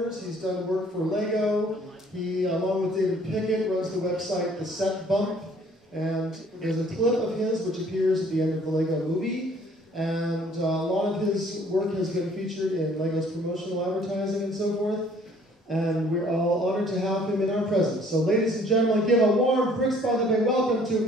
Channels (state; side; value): normal; both; correlation 0.58